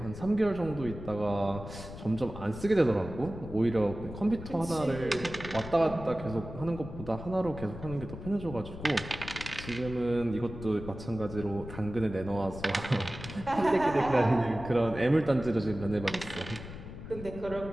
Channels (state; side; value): noise; left; rumble, 11 dB below the sound